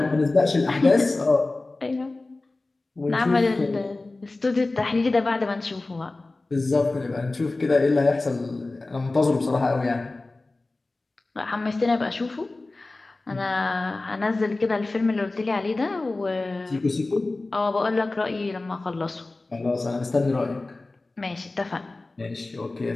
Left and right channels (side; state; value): right; quieter; 3.2 dB